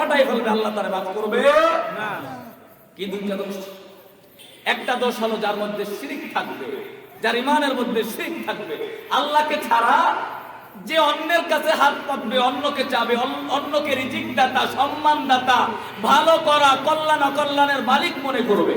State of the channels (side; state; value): both; identical; correlation 1.00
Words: ফেলবে, আল্লাহ তাআলা মাফ করবে না। কি 2টা দোষ? একটা দোষ হলো যার মধ্যে শিরক থাকবে, যার ঈমানের মধ্যে শিরক থাকবে। আল্লাহকে ছাড়া যে অন্যের কাছে হাত পাতবে, অন্যকে চাবে, অন্যকে রিজিক দাতা, সম্মান দাতা, ভালো করা, কল্যাণ অকল্যাণের মালিক মনে করবে,